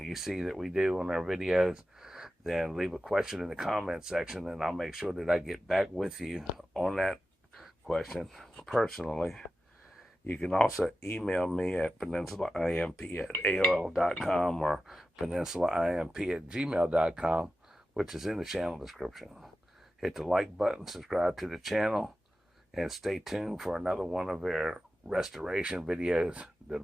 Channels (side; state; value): both; normal; correlation 0.93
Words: you see that we do on our videos, then leave a question in the comment section, and I'll make sure that I get back with you on that question personally. You can also email me at peninsulaimp@aol.com or peninsulaimp@gmail.com, which is in the channel description. Hit the like button, subscribe to the channel, and stay tuned for another one of our restoration videos that'll